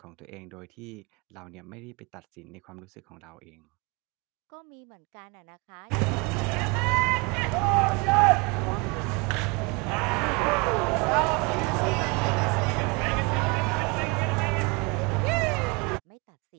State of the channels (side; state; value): left; quieter; 28.8 dB